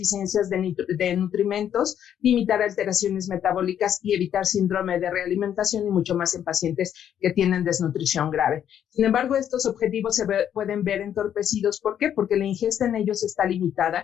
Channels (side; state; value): right; quieter; 9.6 dB